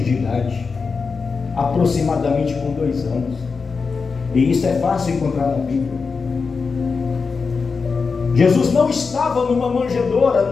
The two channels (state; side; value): quieter; right; 4.9 dB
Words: de idade, aproximadamente com 2 anos. E isso é fácil encontrar na Bíblia. Jesus não estava numa manjedoura.